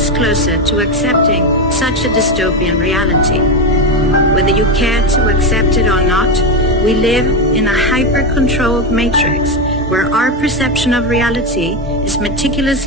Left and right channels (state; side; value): normal; both; correlation 0.13